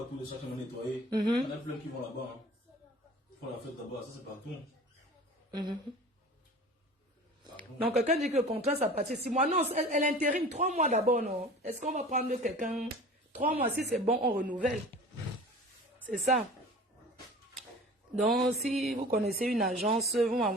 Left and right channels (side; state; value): both; normal; correlation 0.41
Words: tous les chaque année nettoyé. Il y en a plein qui vont là-bas. Ils font la fête là-bas, ça c'est partout. Donc quelqu'un dit que le contrat ça partit 6 mois. Non, elle intérim 3 mois d'abord, non? Est-ce qu'on va prendre quelqu'un 3 mois, si c'est bon, on renouvelle. C'est ça. Donc, si vous connaissez une agence, vous